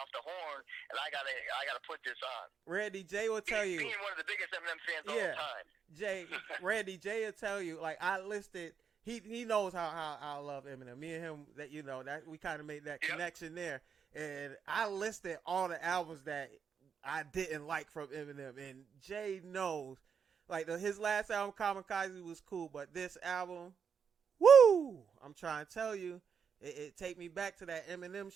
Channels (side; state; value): left; quieter; 6.7 dB